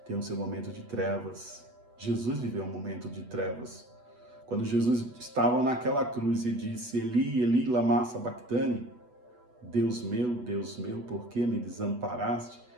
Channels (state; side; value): late; left; 8.0 ms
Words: tem o seu momento de trevas. Jesus viveu um momento de trevas. Quando Jesus estava naquela cruz e disse, Eli, Eli, lama sabachthani, Deus meu, por que me desamparaste?